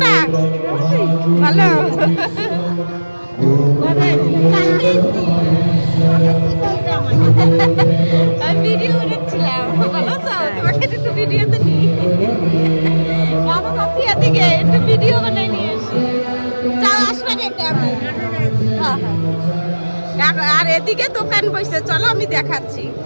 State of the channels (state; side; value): inverted; both; correlation -1.00